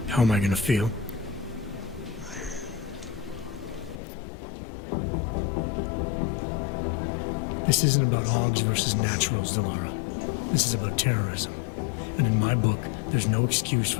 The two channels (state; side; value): drops out; right; at 4.0 s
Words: How am I gonna feel? This isn't about Augs versus Naturals, Delara. This is about terrorism. And in my book, there's no excuse